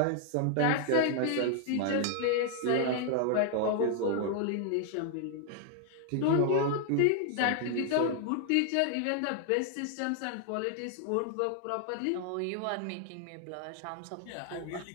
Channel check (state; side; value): different; both; correlation 0.00